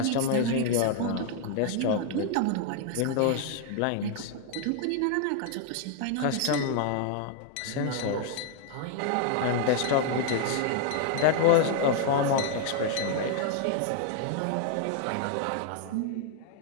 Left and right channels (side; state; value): both; different; correlation 0.00